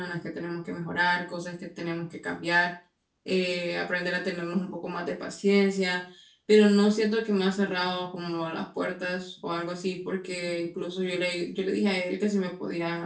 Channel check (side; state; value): both; identical; correlation 1.00